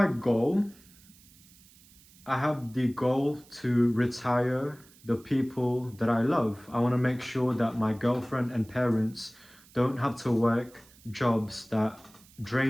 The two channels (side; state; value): right; noise; hiss, 26 dB below the sound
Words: goal, I have the goal to retire the people that I love. I want to make sure that my girlfriend and parents don't have to work jobs that